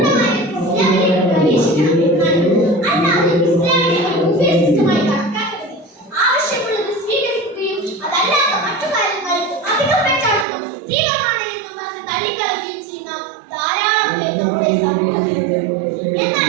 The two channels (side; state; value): left; drops out; at 10.5 s